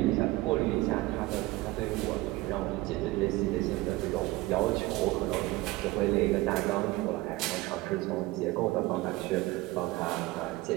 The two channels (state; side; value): quieter; left; 19.6 dB